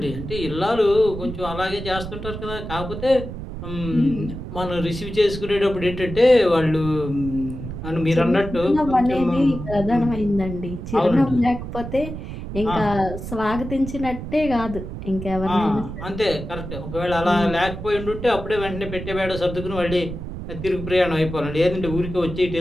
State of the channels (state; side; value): noise; right; rumble, 8 dB below the sound